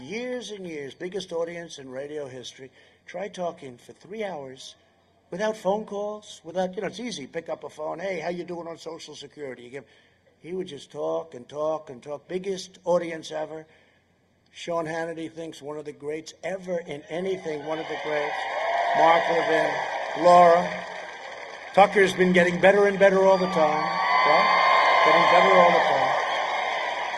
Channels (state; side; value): identical; both; correlation 1.00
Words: and years, biggest audience in radio history. Try talking for 3 hours without phone calls, without, you know, it's easy. Pick up a phone. Hey, how you doing on Social Security? He would just talk and talk and talk. Biggest audience ever. Sean Hannity thinks one of the greats ever in anything, one of the greats. Mark Levin, Laura. Tucker's been getting better and better all the time. Right? Getting better all the time.